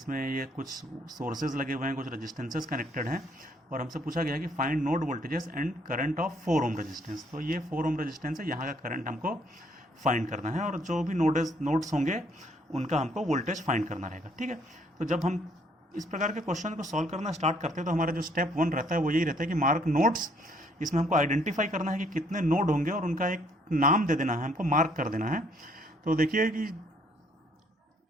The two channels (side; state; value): both; normal; correlation 0.65